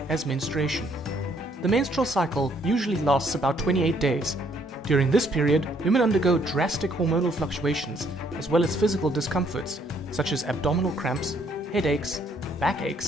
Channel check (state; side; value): normal; both; correlation 0.67